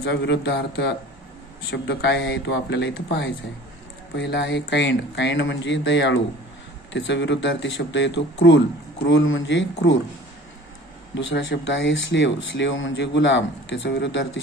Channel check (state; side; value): normal; both; correlation 0.45